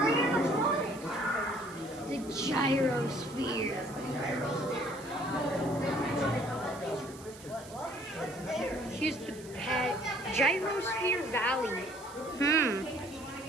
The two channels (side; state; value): right; noise; hiss, 19 dB below the sound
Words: The gyrosphere. Here's the Gyrosphere Valley.